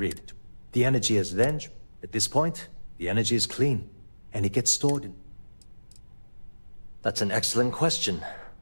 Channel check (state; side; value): inverted; both; correlation -1.00